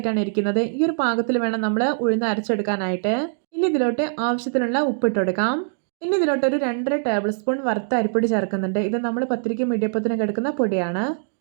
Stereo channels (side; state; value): left; silent; digital silence